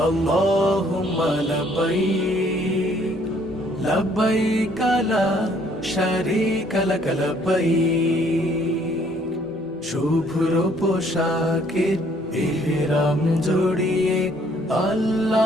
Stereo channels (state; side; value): normal; both; correlation 0.63